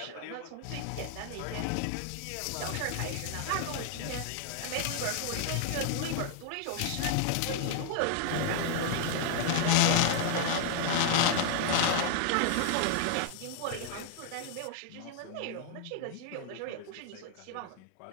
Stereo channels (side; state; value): both; different; correlation 0.00